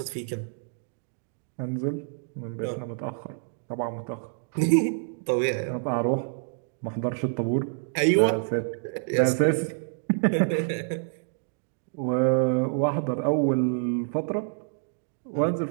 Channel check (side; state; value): left; silent; digital silence